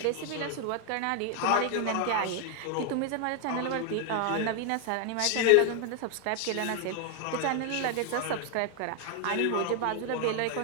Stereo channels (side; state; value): both; different; correlation 0.00